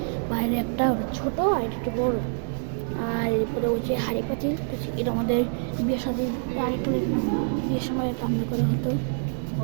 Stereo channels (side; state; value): left; silent; digital silence